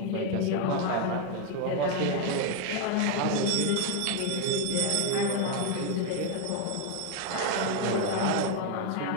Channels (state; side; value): different; both; correlation 0.01